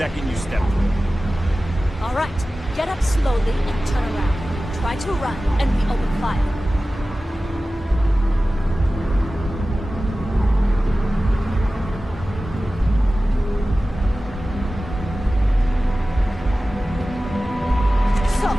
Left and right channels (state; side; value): normal; both; correlation 0.96